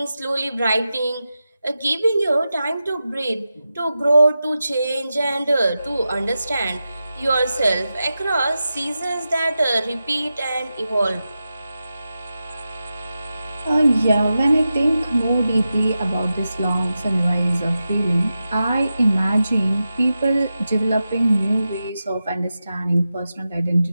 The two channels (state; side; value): inverted; both; correlation -0.91